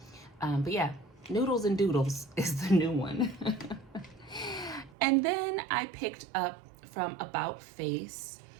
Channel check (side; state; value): left; drops out; at 5.0 s